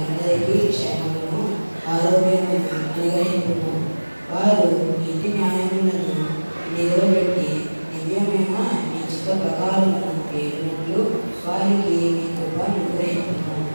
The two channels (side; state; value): both; inverted; correlation -1.00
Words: క్షేమమును ఆరోగ్యమును అనుగ్రహించుము. వారు నీతి న్యాయములను నిలబెట్టి దివ్యమైన నీ చిత్త ప్రకారమును పేరునట్లు వారికి నీ కృపను అనుగ్రహించుము.